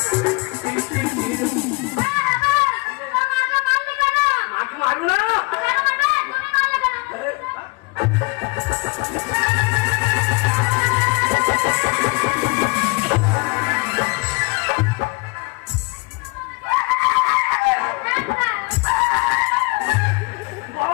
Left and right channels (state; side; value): quieter; right; 27.5 dB